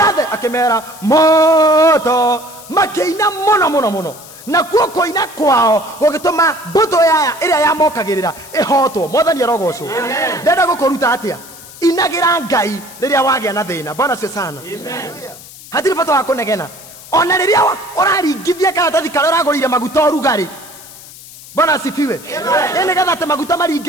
akimera moto makiina muno na kuo koina kwao gugituma mbuto yaya iria yamokagirira ihotwo. Mwathani arogocwo. Ndenda gukuruta atia inagira Ngai riria wagia na thina. Bwana asifiwe sana. Hatiri bata wa kunegena ona riria uraringithia karatathi karia uragurire maguta urugari. Bwana asifiwe. Ene gatha te maguta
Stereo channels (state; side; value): noise; left; hiss, 18 dB below the sound